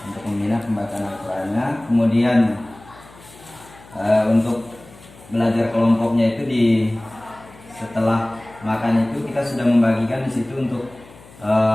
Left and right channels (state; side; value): noise; left; hum, 23 dB below the sound